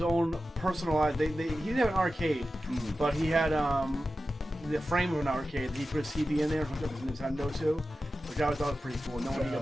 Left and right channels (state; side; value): normal; both; correlation 0.93